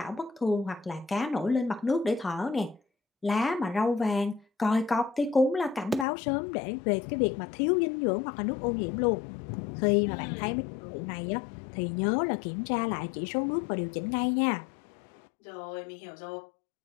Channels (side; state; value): right; drops out; at 6.1 s